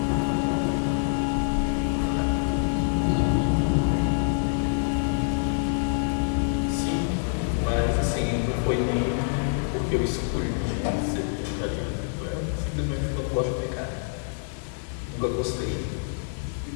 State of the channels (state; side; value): silent; right; 61 dB below the other